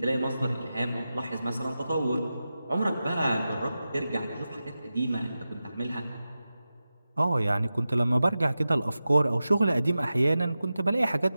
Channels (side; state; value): both; inverted; correlation -0.93